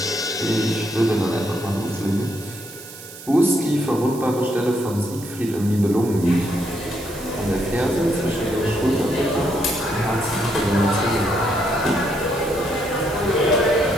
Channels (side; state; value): right; noise; hiss, 15 dB below the sound